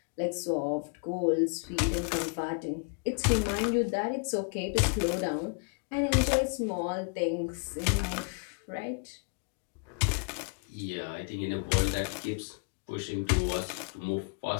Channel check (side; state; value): right; quieter; 38.5 dB